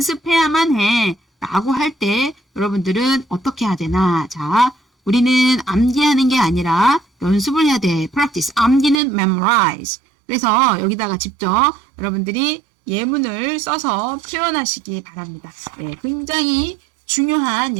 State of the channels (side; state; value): left; drops out; at 9.0 s